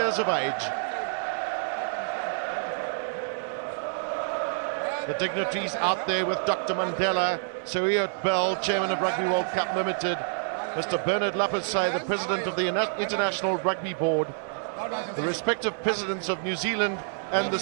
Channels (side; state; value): left; silent; digital silence